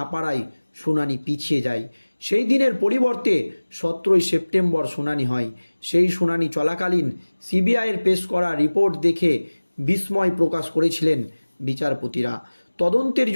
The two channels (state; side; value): inverted; both; correlation -1.00